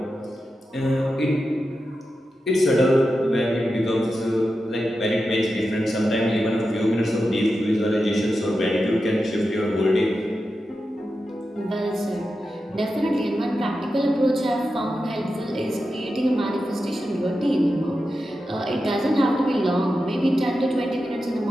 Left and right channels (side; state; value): both; normal; correlation 0.90